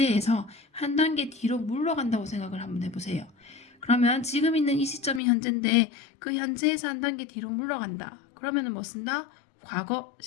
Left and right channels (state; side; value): drops out; right; at 5.2 s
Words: 한 단계 뒤로 물러간다고 생각을 한번 해보세요. 그러면 지금 있는 이 시점이 현재인데 그 현재에서 한 단계 뒤로 물러간다. 그러면은 뭐 쓴다? 과거